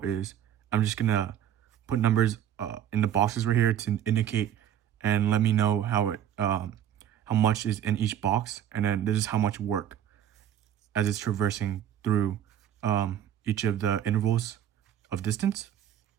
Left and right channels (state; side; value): quieter; left; 10.2 dB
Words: is I'm just going to put numbers in the boxes right here to indicate and let me know how much is in each box. And then this is how much work as it's traversing through each of the intervals of distance.